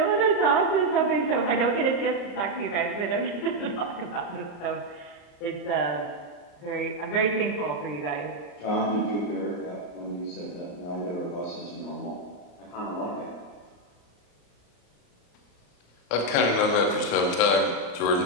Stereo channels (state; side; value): late; right; 34 ms